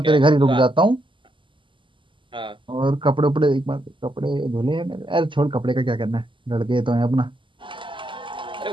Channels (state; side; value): late; left; 0.24 ms